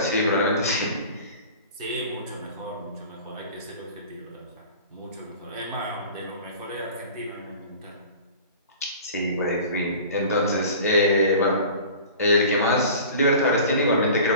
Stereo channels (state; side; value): inverted; both; correlation -0.41